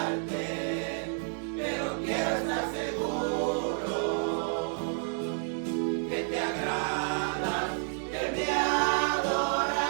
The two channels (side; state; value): left; silent; 58 dB below the other